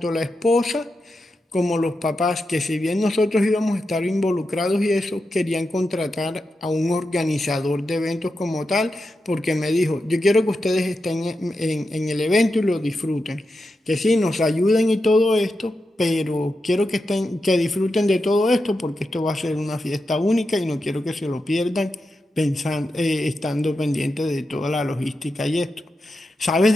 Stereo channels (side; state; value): both; normal; correlation 0.88